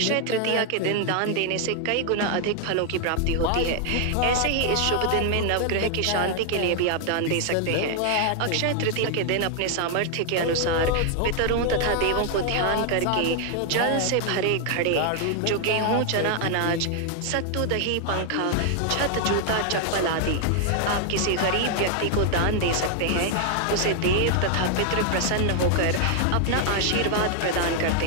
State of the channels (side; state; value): both; different; correlation 0.00